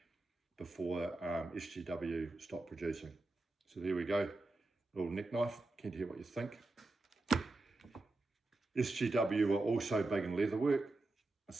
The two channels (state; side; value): quieter; left; 3.0 dB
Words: before SGW stopped producing. So there we go, little neck knife. Keen to hear what you think. SGW are also big in leatherwork,